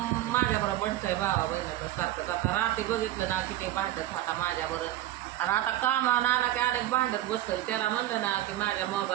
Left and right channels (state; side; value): quieter; left; 14.1 dB